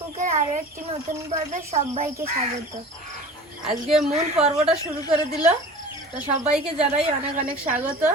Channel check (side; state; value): both; normal; correlation 0.39